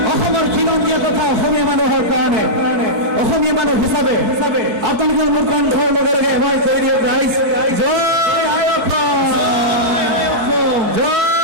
অসমৰ খিলঞ্জীয়া কথা অসমীয়া মানুহৰ কাৰণে অসমীয়া মানুহ হিচাপে আপোনালোকে মোৰ কণ্ঠৰ লগে লগে এবাৰ কৈ দিয়ক ৰাইজ, জয় I Assam, Joy I Assam,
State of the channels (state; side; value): late; left; 4.6 ms